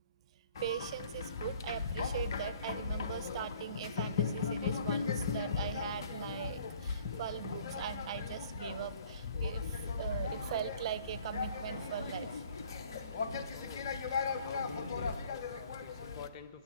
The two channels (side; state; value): both; inverted; correlation -0.55